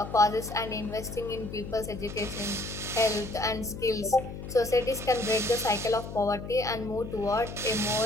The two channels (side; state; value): left; noise; hum, 9 dB below the sound